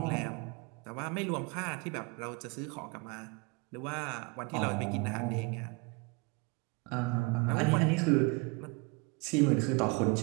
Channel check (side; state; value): left; quieter; 29.0 dB